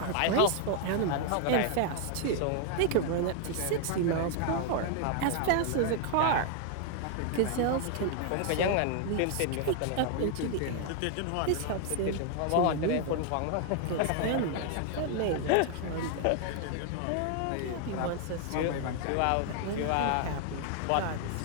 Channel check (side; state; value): both; different; correlation 0.00